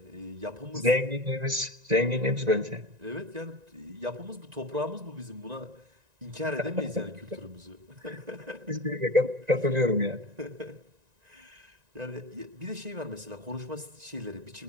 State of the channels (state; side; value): late; left; 1.9 ms